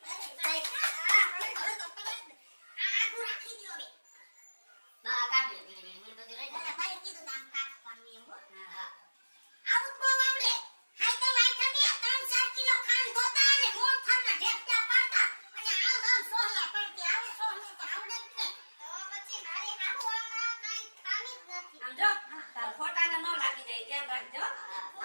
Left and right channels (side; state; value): both; inverted; correlation -1.00